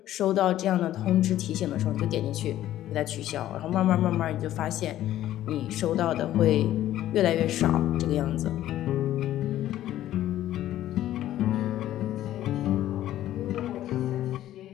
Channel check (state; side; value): quieter; right; 13.1 dB